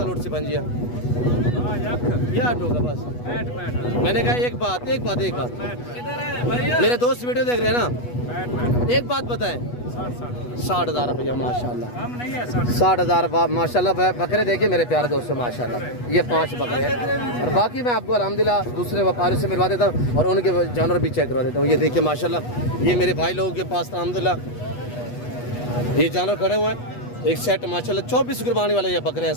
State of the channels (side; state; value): right; late; 8.2 ms